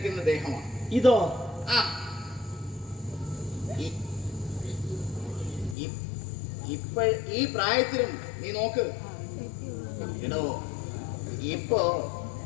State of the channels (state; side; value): drops out; right; at 5.8 s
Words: ദേഹമാണ് ഇതോ. ഈ പ്രായത്തിലും നീ നോക്ക് എടോ, ഇപ്പോ